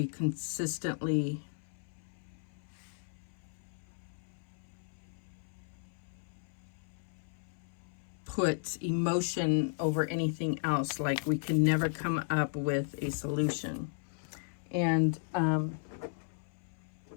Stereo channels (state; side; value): silent; right; 54 dB below the other